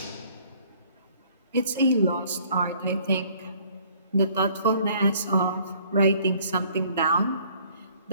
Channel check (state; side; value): inverted; both; correlation -0.59